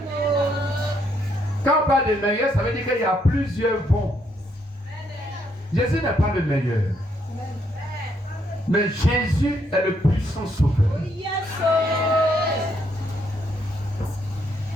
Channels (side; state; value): both; normal; correlation 0.74